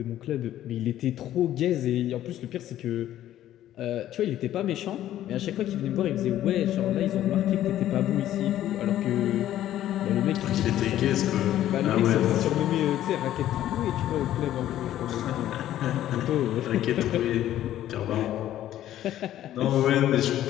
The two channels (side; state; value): right; quieter; 12.6 dB